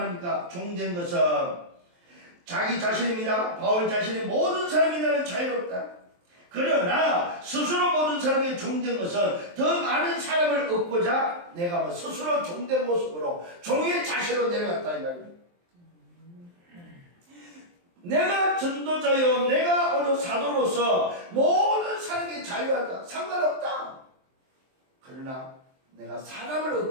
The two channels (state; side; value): late; left; 23 ms